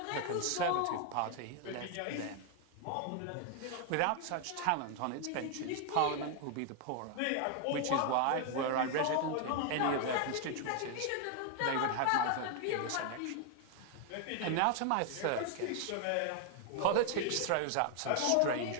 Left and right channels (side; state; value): both; different; correlation 0.00